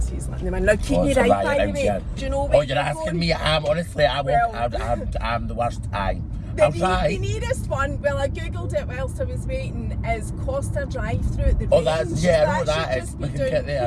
he's letting them in. Now, keep me right, by the way. Do you know where you're asking me? I'm the worst. The nearest one, well, I googled it whilst I was waiting, is Costa Drive-through at the range. I know that is. Should We just can be get down there,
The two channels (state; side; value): identical; both; correlation 1.00